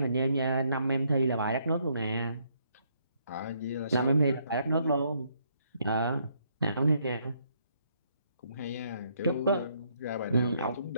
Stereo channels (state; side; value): inverted; both; correlation -0.71